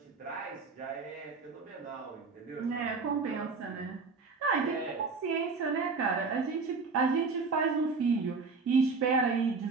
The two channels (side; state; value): left; quieter; 4.5 dB